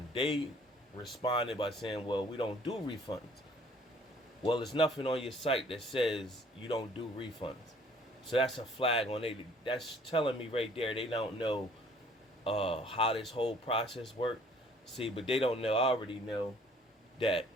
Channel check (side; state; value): both; normal; correlation 0.57